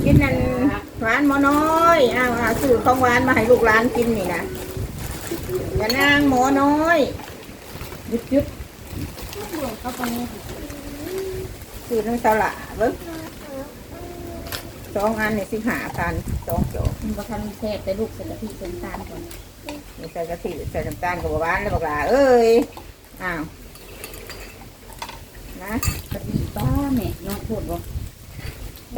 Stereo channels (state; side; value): identical; both; correlation 1.00